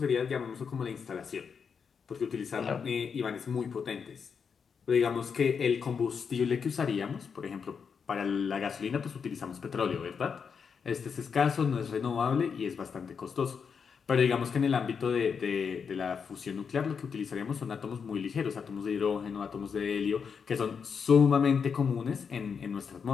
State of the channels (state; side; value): quieter; right; 6.3 dB